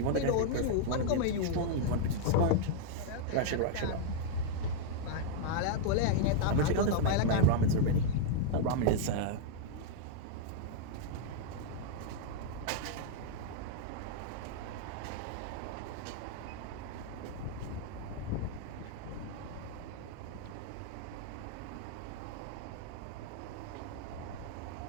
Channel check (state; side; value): different; both; correlation -0.01